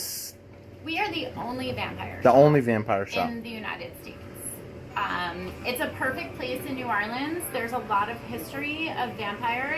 We are the only vampire The shop only vampire shop. in the United States. It's a perfect place in New Orleans. There's a lot of history of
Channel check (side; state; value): both; identical; correlation 1.00